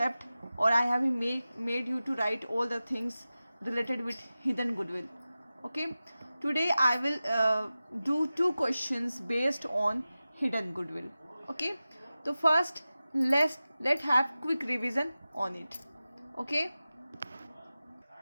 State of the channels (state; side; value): inverted; both; correlation -0.95